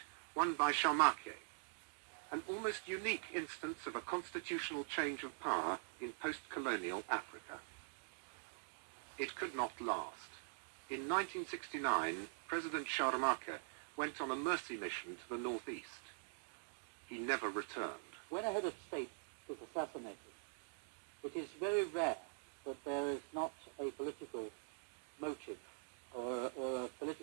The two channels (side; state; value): left; silent; digital silence